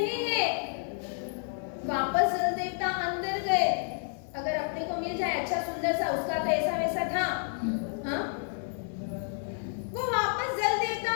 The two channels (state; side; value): silent; right; 58 dB below the other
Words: है। वापस जल देवता अंदर गए। अगर अपने को मिल जाए अच्छा सुंदर सा, उसका तो ऐसा वैसा था, हाँ? वो वापस जल देवता